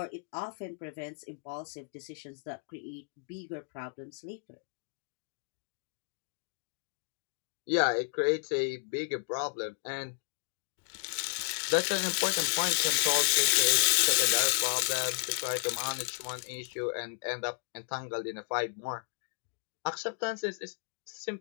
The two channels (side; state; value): right; silent; 56 dB below the other